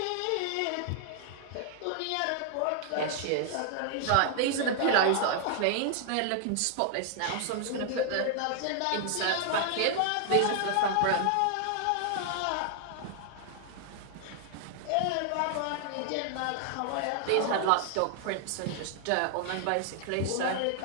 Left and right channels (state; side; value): different; both; correlation 0.00